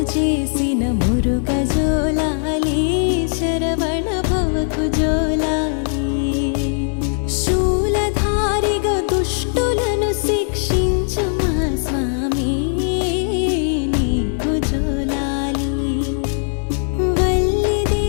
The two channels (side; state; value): right; silent; digital silence